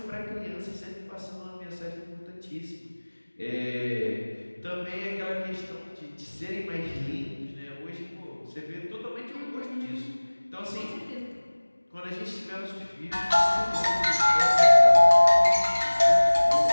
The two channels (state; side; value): inverted; both; correlation -1.00